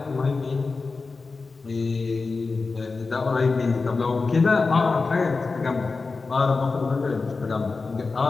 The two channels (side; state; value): right; quieter; 4.1 dB